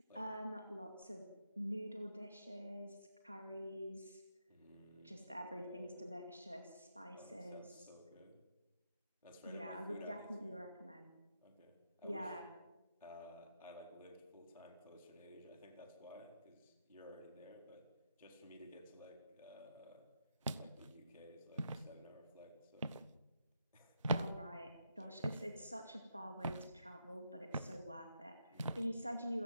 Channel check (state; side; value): inverted; both; correlation -0.81